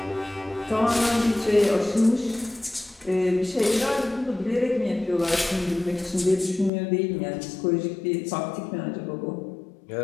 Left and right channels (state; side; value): drops out; right; at 6.7 s